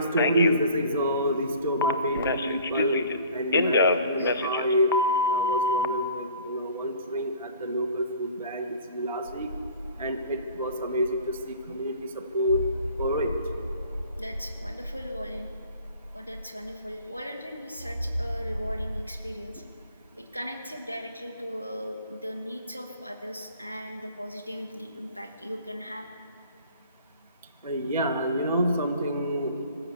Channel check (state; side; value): inverted; both; correlation -0.49